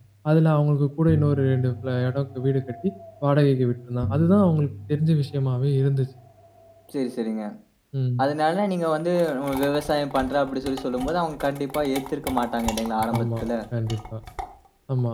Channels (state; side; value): identical; both; correlation 1.00